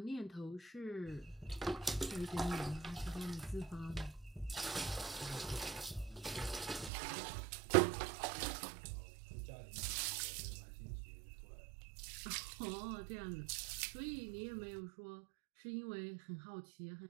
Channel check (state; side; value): drops out; left; at 6.9 s